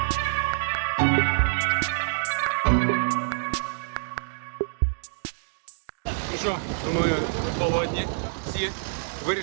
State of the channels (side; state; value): left; silent; digital silence